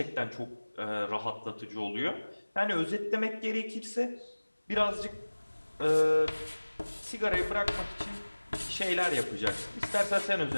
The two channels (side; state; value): both; inverted; correlation -1.00